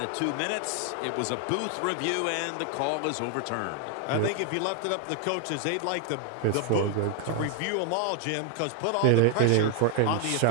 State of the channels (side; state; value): both; different; correlation 0.00